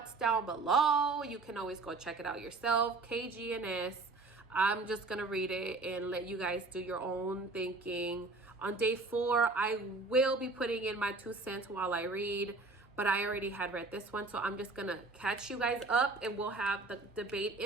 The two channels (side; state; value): left; quieter; 3.6 dB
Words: down below. You can always go check it out yourself. KGNS. I'm just gonna read it and let you guys do your own thinking. On day 4, I will be putting in my 2 cents while I read, but I already had read this one, so I'm just gonna catch you guys up, and we'll have the debate